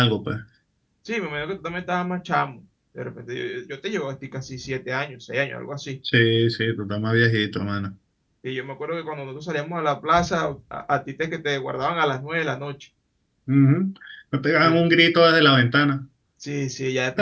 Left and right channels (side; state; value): both; identical; correlation 1.00